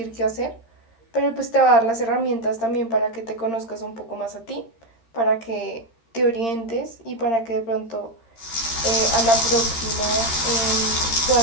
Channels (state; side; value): late; right; 13 ms